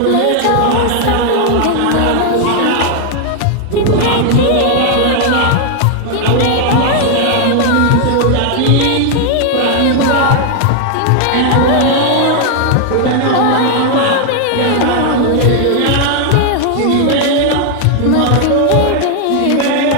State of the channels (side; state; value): both; different; correlation 0.00